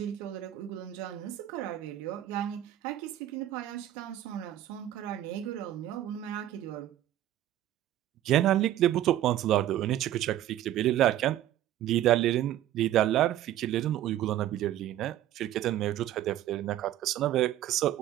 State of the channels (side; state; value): left; quieter; 12.7 dB